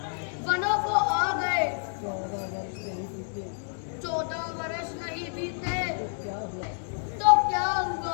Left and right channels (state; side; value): silent; right; digital silence